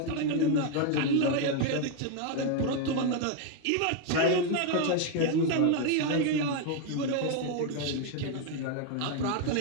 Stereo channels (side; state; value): both; different; correlation 0.01